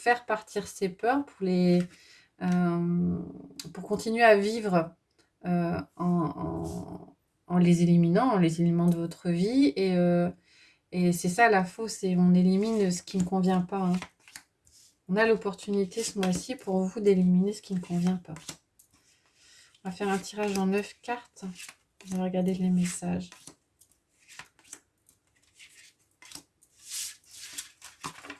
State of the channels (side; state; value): both; identical; correlation 1.00